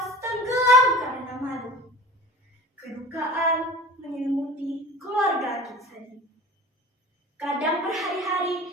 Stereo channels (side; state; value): both; normal; correlation 0.40